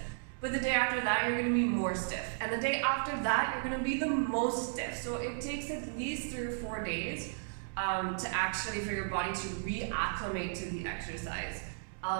But the day after that, you're gonna be more stiff. And the day after that, you're gonna be the most stiff. So it takes at least 3 or 4 days to actually for your body to reacclimate to the exercise.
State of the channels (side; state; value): left; silent; digital silence